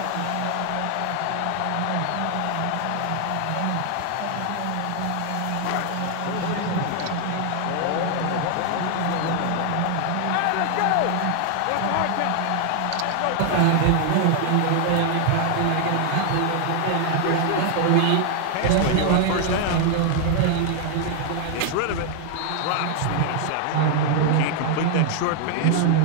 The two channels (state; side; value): different; both; correlation 0.00